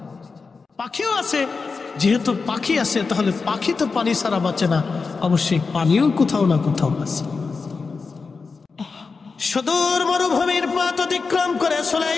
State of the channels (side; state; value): right; quieter; 4.6 dB